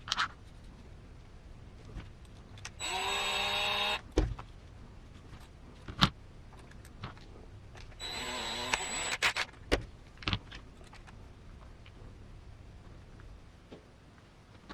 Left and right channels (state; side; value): identical; both; correlation 1.00